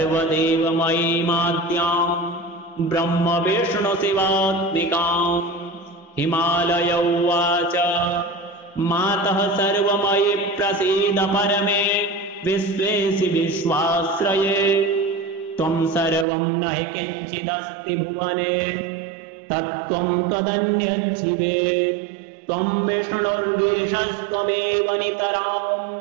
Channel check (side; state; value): left; drops out; at 16.2 s